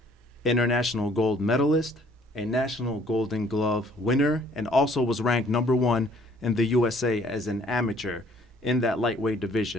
international gold medalist, a national Golden Glove winner, and also was ranked #1 in the USA as an amateur in that lightweight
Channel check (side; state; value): both; normal; correlation 0.59